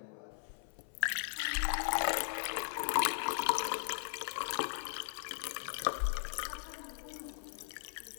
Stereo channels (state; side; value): silent; right; 52 dB below the other